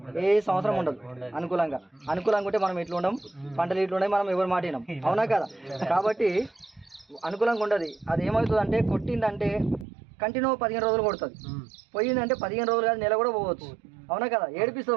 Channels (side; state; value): left; drops out; at 9.9 s